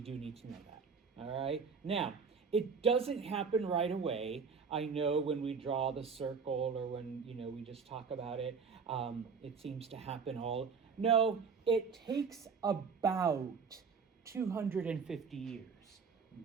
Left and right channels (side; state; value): left; quieter; 5.6 dB